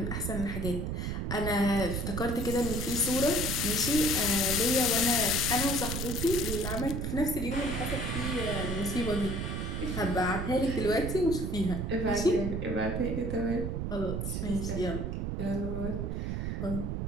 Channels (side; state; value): right; noise; rumble, 2 dB below the sound